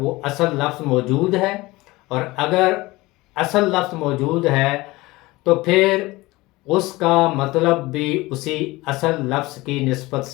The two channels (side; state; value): right; quieter; 20.7 dB